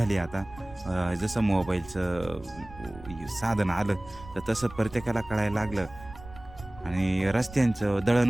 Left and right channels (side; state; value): right; noise; rumble, 17 dB below the sound